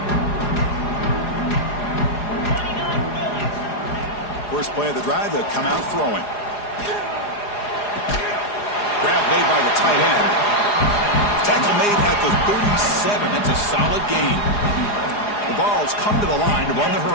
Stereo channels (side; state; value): right; late; 4.9 ms